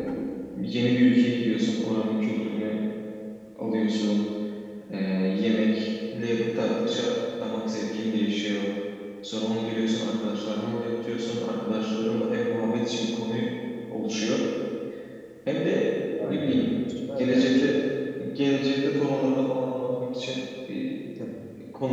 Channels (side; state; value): both; identical; correlation 1.00